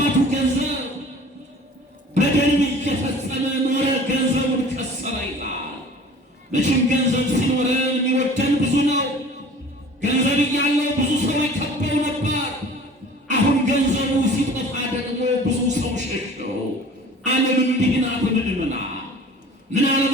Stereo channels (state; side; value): normal; both; correlation 0.45